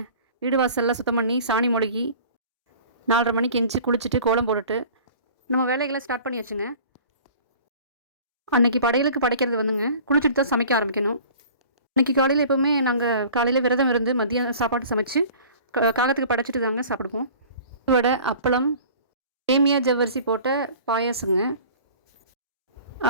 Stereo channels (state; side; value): inverted; both; correlation -0.45